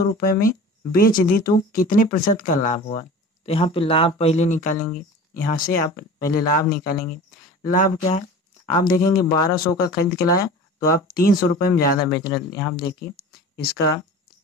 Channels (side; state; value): both; normal; correlation 0.38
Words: रुपए में बेच दी, तो कितने प्रतिशत का लाभ हुआ? तो यहाँ पे लाभ पहले निकालेंगे, यहाँ से आप पहले लाभ निकालेंगे। लाभ क्या है? आप देखेंगे 1200 का खरीद के लाया तो आप 300 रुपए में ज़्यादा बेच रहे हैं, यहाँ देखिए इसका